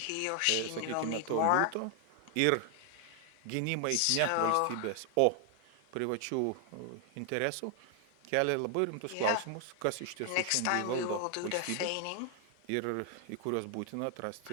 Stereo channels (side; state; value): both; different; correlation 0.00